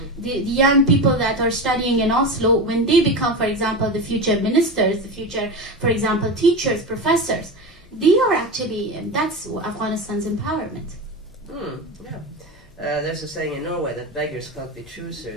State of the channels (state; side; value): noise; left; hum, 29 dB below the sound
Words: The young people that are studying in Oslo, when they become, for example, the future ministers, the future, for example, teachers, professors, they are actually, and that's Afghanistan's empowerment. There's a saying in Norway that beggars can't be